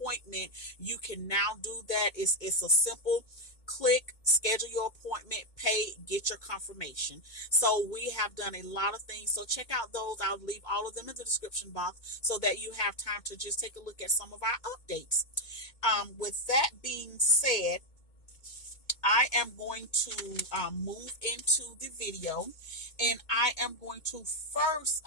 you can now do that. It's a simple click, schedule your appointment, pay, get your confirmation. So we have done a lot of things. So check out those. I'll leave all of them in the description box so that you have time to just take a look at some of our updates. With that being said, I am going to move into the video, and I am going to first,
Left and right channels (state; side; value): late; right; 2.2 ms